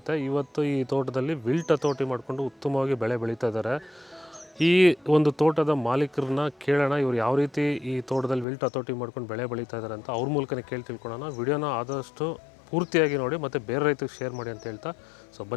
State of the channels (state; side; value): drops out; right; at 8.5 s